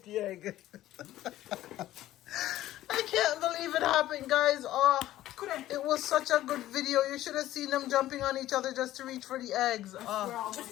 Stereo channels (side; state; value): right; quieter; 14.3 dB